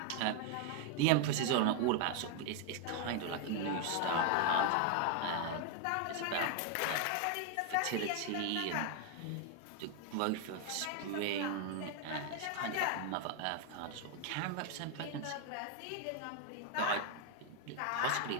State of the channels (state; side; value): different; both; correlation 0.00